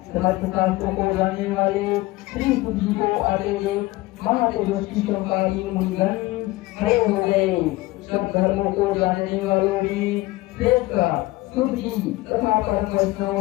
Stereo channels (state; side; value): quieter; right; 19.7 dB